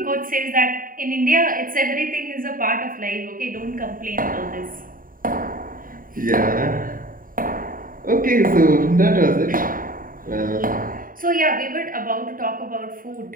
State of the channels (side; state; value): left; late; 0.41 ms